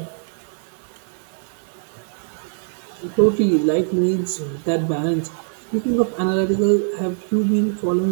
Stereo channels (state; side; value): silent; left; digital silence